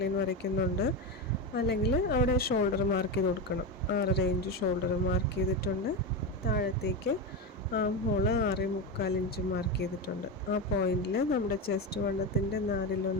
ലൈൻ വരയ്ക്കുന്നുണ്ട്. അല്ലെങ്കിൽ അവിടെ ഷോൾഡർ മാർക്ക് ചെയ്ത് കൊടുക്കണം. 6.5 ഇഞ്ച് ഷോൾഡർ മാർക്ക് ചെയ്തിട്ടുണ്ട്. താഴത്തേക്ക് ആം ഹോള് 6.25 ഇഞ്ച് മാർക്ക് ചെയ്തിട്ടുണ്ട്. ആ പോയിന്റിൽ നമ്മുടെ ചെസ്റ്റ് വണ്ണത്തിൻ്റെ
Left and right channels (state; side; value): normal; both; correlation 0.16